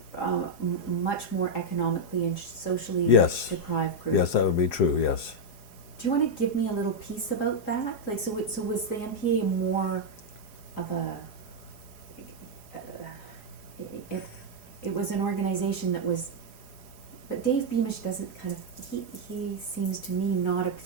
much more economically and socially Yes. deprived group? Yes, that would be true. Yes. Do you want to give me a little piece about that? Like, so was the MPA more of a, it was an organization that was, but Dave Beamish doesn't kind of, he seems to me not a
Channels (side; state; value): right; late; 4.8 ms